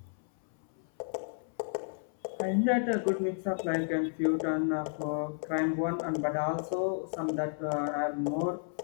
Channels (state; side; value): silent; right; 56 dB below the other